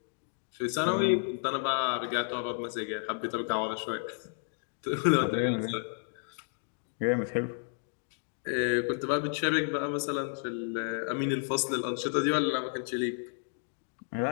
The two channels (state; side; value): silent; right; 57 dB below the other